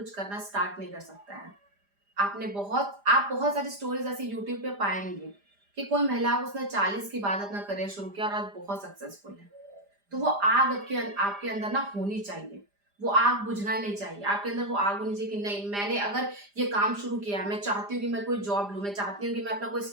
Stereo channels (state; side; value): late; left; 5.0 ms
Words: करना स्टार्ट नहीं कर सकता है। आप बहुत सारी स्टोरीज ऐसी यूट्यूब पे पाएंगे कि कोई महिला उसने 40 के बाद अपना करियर शुरू किया और आज बहुत सक्सेसफुल है। तो वो आग आपके अंदर ना होनी चाहिए, वो आग बुझना नहीं चाहिए। आपके अंदर वो आग होनी चाहिए कि नहीं, मैंने अगर ये काम शुरू किया, मैं चाहती हूँ कि मैं कोई जॉब लूँ, मैं चाहती हूँ कि मैं अपना कोई